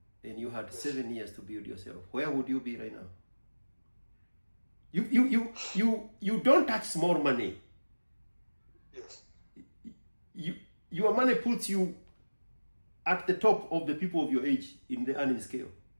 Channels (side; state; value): both; inverted; correlation -1.00